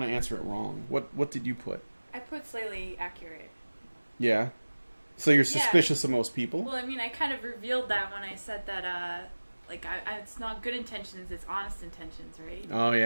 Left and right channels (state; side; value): inverted; both; correlation -1.00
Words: to answer it wrong. What did you put? I put slightly accurate. Yeah. So you're suspicious of most people? Well, I mean, I kind of revealed that when I said that, it's not good intentions, it's honest intentions, right? Oh,